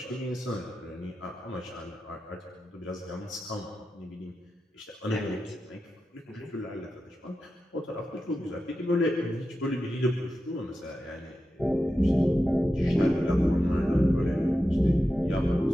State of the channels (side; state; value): both; normal; correlation 0.91